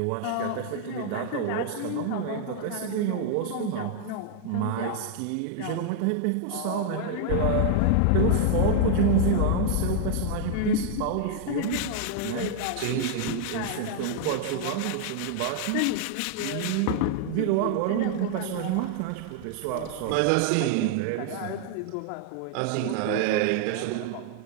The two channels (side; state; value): both; different; correlation 0.00